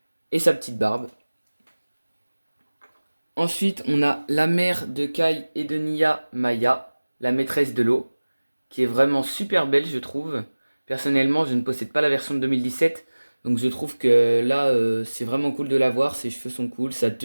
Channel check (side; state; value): both; inverted; correlation -1.00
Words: Et sa petite barbe. Ensuite, on a la mère de Kai et de Nya, Maya, la maîtresse de l'eau, qui est vraiment super belle, je trouve. Personnellement, je ne possède pas la version de 2017, donc je trouve que là, c'est vraiment cool de la voir. Ses cheveux sont cool, sa